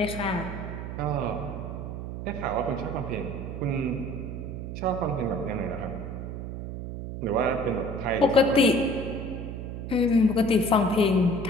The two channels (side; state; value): right; noise; hum, 7 dB below the sound